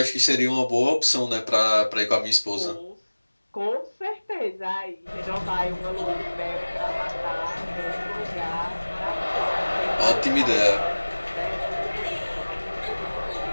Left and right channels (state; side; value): inverted; both; correlation -1.00